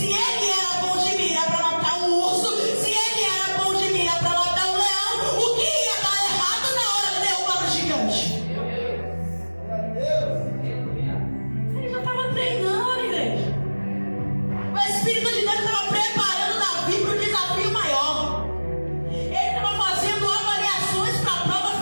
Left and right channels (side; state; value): both; inverted; correlation -1.00